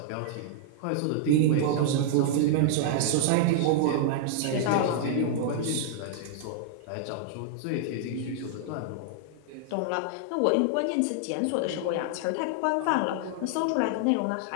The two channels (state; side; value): different; both; correlation -0.01